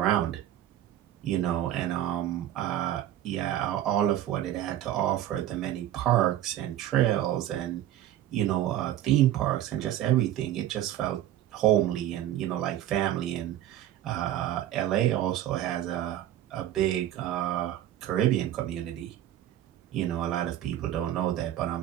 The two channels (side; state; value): left; quieter; 12.5 dB